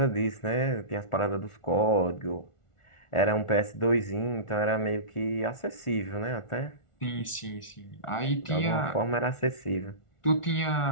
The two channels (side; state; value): right; late; 1.4 ms